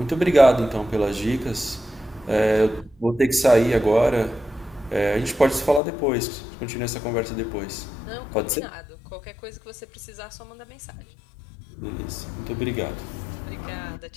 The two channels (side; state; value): right; drops out; at 5.8 s